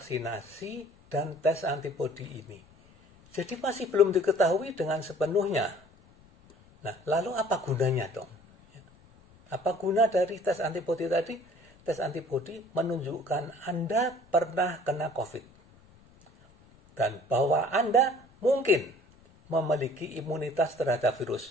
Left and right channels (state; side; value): noise; left; rumble, 28 dB below the sound